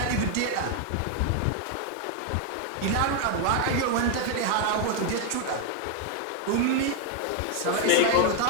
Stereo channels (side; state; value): both; different; correlation 0.00